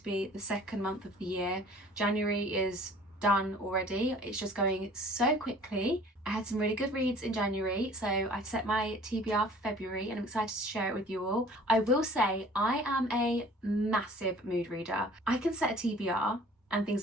be the second month of the year. January is done already. It's just going so quickly. I had some really good reads in January, so I've set my TBR for February and I'm excited to share it with you all. I will say I am a massive mood reader. I can set a TBR and things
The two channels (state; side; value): normal; both; correlation 0.50